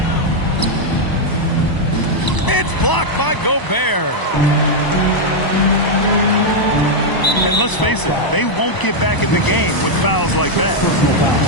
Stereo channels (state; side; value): late; right; 1.0 ms